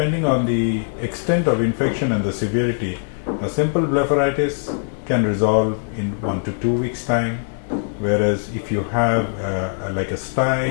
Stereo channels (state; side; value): silent; right; digital silence